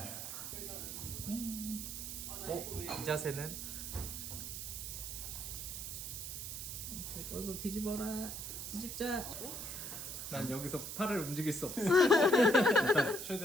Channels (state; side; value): noise; right; hiss, 6 dB below the sound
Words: 이 자세는? 어서 뒤집어라. 뒤집자. 난 여기서 팔을 움직일 수 없어. 일단